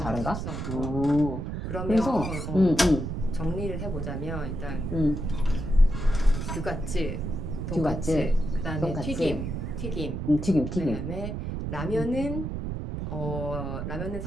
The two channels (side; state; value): right; noise; rumble, 4 dB below the sound